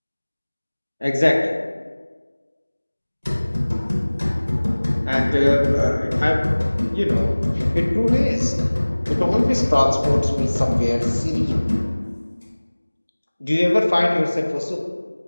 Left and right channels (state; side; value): inverted; both; correlation -1.00